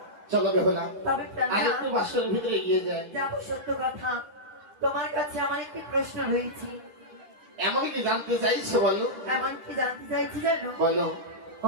চলো বেহুলা তবে আর প্রাণনা, একটু বাসরের ভিতরে এগিয়ে যায়। যাবো সত্য কথা। তোমার কাছে আমার একটি প্রশ্ন রয়েছে। এমন কি জানতে চাইছো বলো? এমন কি জানতে চাইছি জানো? বলো।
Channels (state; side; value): late; left; 11 ms